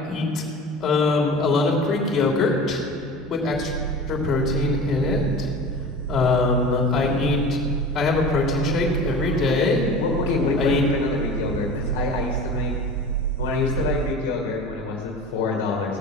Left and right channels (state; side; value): normal; both; correlation 0.36